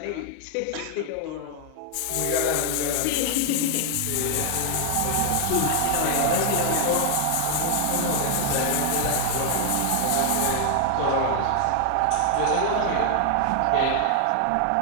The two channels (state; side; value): different; both; correlation 0.00